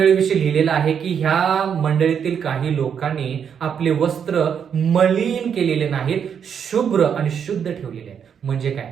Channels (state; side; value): quieter; left; 7.6 dB